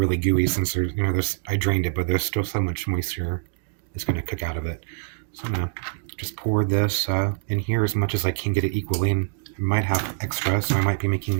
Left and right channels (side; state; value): left; silent; digital silence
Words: gooey, since there's I drained it, but there's still so much moisture that's going to cook out of it. So I'm gonna just pour this in here as much as I can get it equally, and I might have extra, so I might be